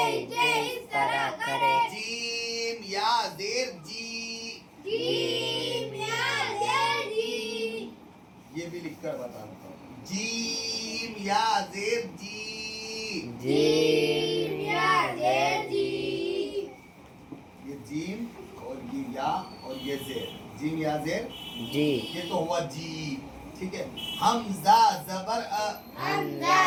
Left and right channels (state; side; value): identical; both; correlation 1.00